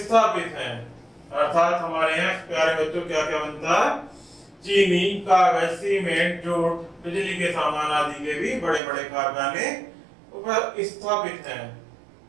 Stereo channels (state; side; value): drops out; left; at 8.8 s